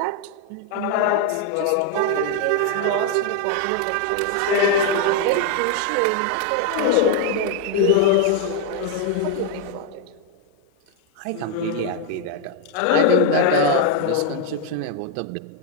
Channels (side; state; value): both; different; correlation 0.01